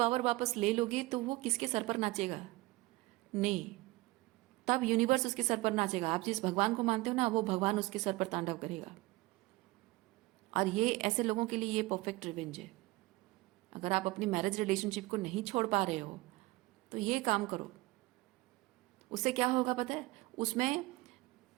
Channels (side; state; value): left; quieter; 21.1 dB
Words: वापस ले लोगे तो वो किसके सर पर नाचेगा? नहीं, तब यूनिवर्स उसके सर पर नाचेगा। आप जिस भगवान को मानते हो ना, वो भगवान उसके सर पर तांडव करेगा। और ये ऐसे लोगों के लिए ये परफेक्ट रिवेंज है। अगर आप अपनी मैरिज रिलेशनशिप को नहीं छोड़ पा रहे हो तो ये काम करो। उससे क्या होगा पता है? उसमें